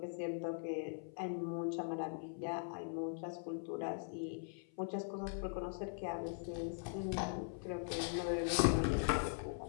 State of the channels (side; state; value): right; silent; 50 dB below the other